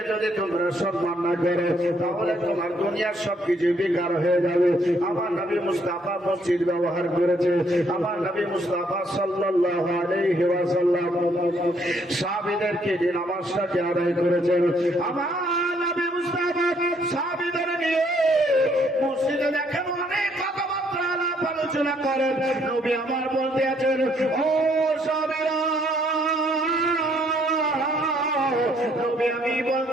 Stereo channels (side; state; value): both; normal; correlation 0.68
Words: যদি তোমরা সম্মান না করো, তাহলে তোমার দুনিয়ার সবকিছু বেকার হয়ে যাবে। আমার নবী মুস্তাফা মসজিদ ব্যবহার করেছে, আমার নবী মুস্তাফা সাল্লাল্লাহু আলাইহি ওয়াসাল্লাম সাহাবীদেরকে যে নামাজটাকে আদায় করেছেন, আমার নবী মুস্তাফা সাহাবীদের নিয়ে মসজিদে দেখেন অনেক কথাবার্তা আলাপ আলোচনা করেন। নবী আমার বলতে আছেন, ও সাহাবীরা, নবী আমি